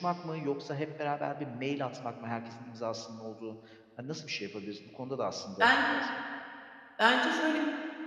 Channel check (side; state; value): both; identical; correlation 1.00